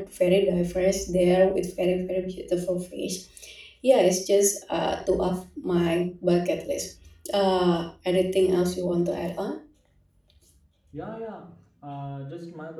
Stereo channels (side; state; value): both; identical; correlation 1.00